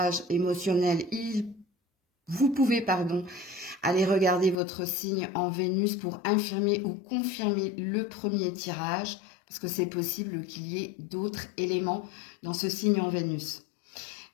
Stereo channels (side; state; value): right; drops out; at 4.5 s